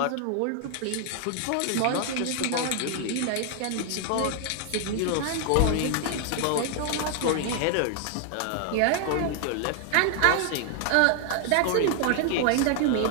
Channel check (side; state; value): both; different; correlation 0.00